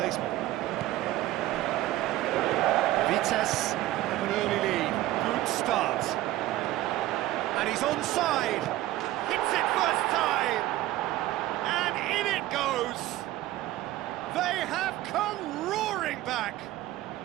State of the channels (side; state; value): left; quieter; 15.6 dB